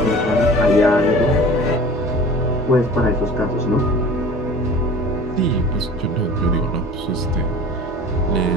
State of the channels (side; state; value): both; normal; correlation 0.42